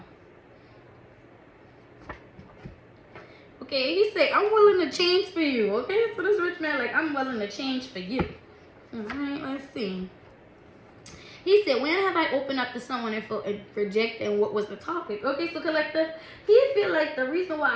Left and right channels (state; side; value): identical; both; correlation 1.00